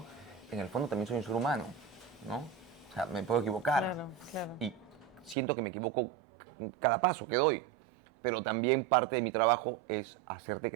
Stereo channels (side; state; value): left; drops out; at 5.4 s